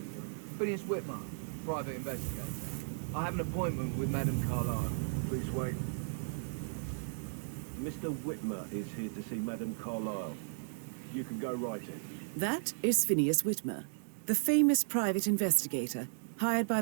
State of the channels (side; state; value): left; silent; digital silence